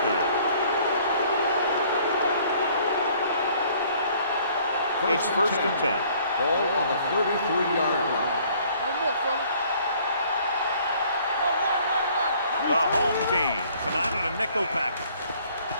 down. It's first and 10. Ball on the 33-yard line. No more, fellas. The home team come out in a nickel package.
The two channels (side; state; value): both; inverted; correlation -0.58